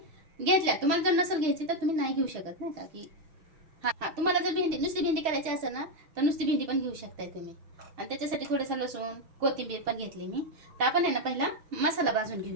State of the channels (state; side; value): late; left; 6.5 ms